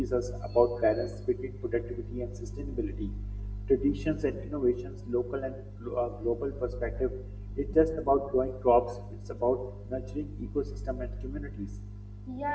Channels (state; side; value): identical; both; correlation 1.00